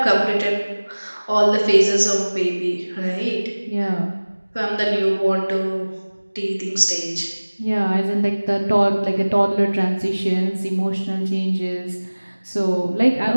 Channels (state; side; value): inverted; both; correlation -1.00